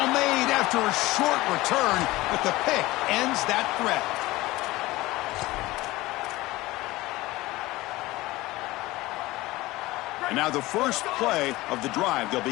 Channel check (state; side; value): quieter; right; 19.1 dB